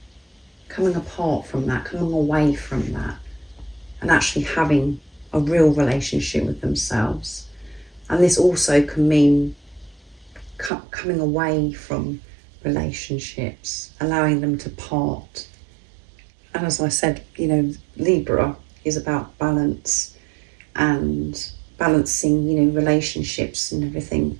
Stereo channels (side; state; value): left; drops out; at 10.7 s